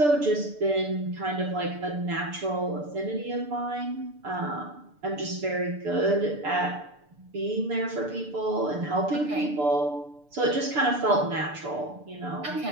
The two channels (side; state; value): left; late; 6.8 ms